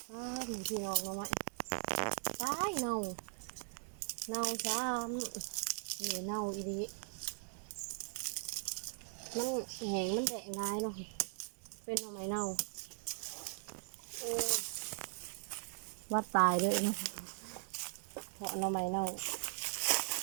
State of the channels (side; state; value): left; silent; 51 dB below the other